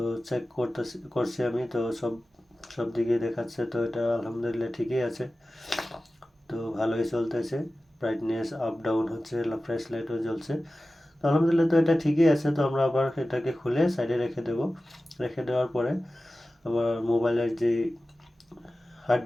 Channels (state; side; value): normal; both; correlation 0.95